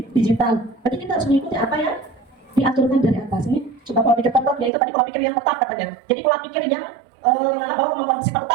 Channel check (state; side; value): drops out; left; at 4.7 s